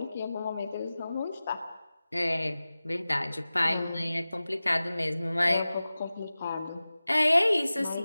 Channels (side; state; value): both; inverted; correlation -0.96